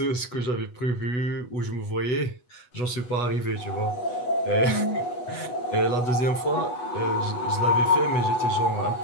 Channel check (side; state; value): right; late; 8.1 ms